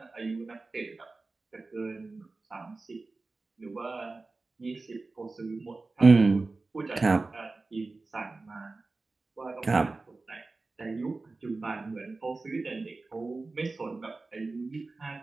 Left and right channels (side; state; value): left; quieter; 3.6 dB